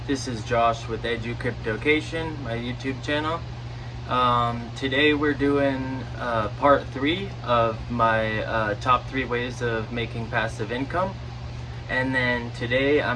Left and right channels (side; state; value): both; identical; correlation 1.00